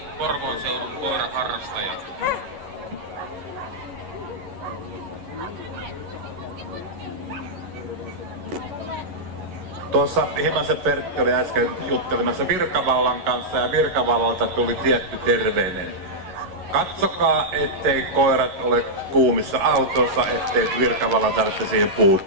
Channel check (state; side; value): late; left; 11 ms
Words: Porvoon seudun koiraharrastaja. Tuossa Himasen Pertti oli äsken juttelemassa Virkavallan kanssa ja Virkavallalta tuli tietty terveinen. Katsokaa, ettei koirat ole kuumissa autossa, ettei Virkavallan tarvitse siihen